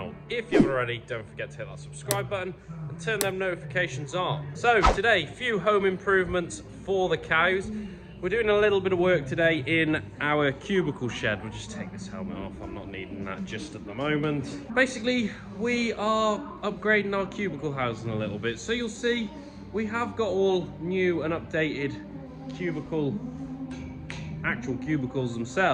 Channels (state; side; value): identical; both; correlation 1.00